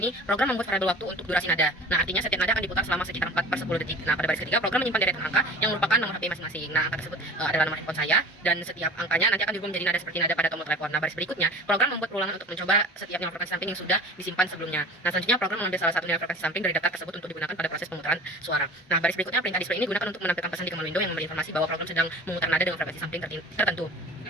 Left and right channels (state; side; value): normal; both; correlation 0.40